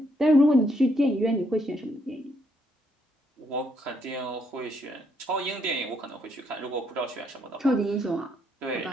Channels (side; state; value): both; normal; correlation 0.73